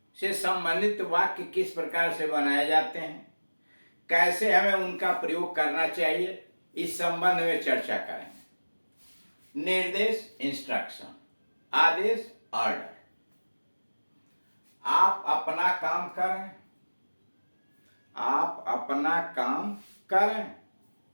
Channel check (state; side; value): inverted; both; correlation -1.00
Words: से संबंधित वाक्य किस प्रकार से बनाए जाते हैं, कैसे हमें उनका प्रयोग करना चाहिए, इस संबंध में चर्चा करेंगे। निर्देश इंस्ट्रक्शन, आदेश ऑर्डर। आप अपना काम करें, आप अपना काम करें।